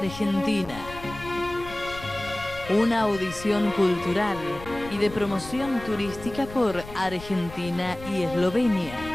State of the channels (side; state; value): left; noise; rumble, 15 dB below the sound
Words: Una audición cultural y de promoción turística por Argentina y Eslovenia,